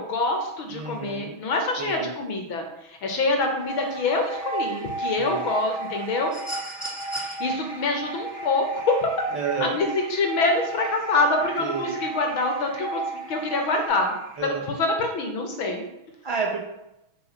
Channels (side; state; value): right; late; 6.2 ms